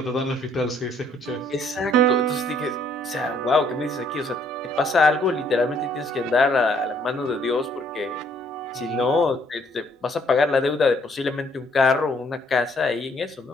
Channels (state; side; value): normal; both; correlation 0.65